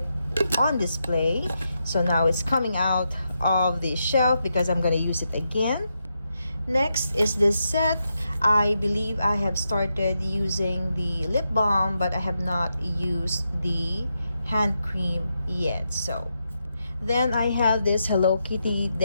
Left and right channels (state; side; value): inverted; both; correlation -0.85